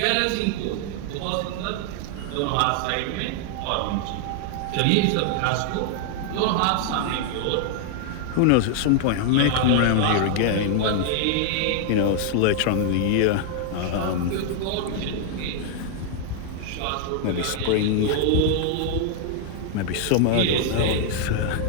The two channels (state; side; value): different; both; correlation 0.00